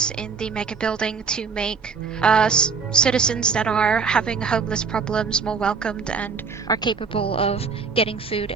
in the Mega Building to make citizens that are having homeless problems more welcomed and are capable of getting food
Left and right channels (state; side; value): quieter; left; 5.4 dB